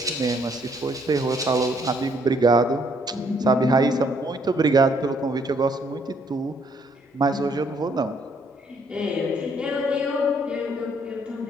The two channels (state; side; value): normal; both; correlation 0.67